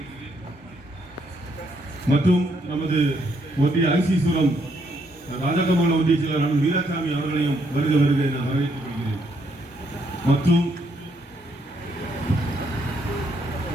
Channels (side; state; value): both; normal; correlation 0.73